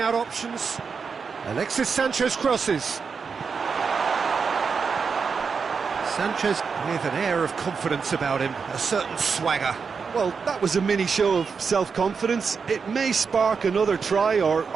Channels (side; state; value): left; quieter; 5.6 dB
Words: options. Alexis Sanchez crosses. Sanchez with an air of confidence about him, a certain swagger. Well, that was a mini show of self-confidence. It may spark another try or